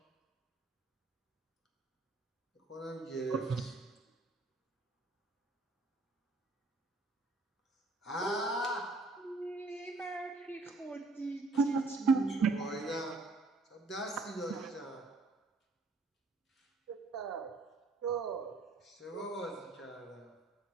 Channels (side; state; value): left; quieter; 3.4 dB